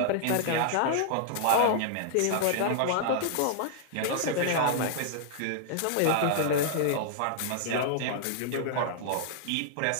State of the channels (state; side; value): different; both; correlation -0.01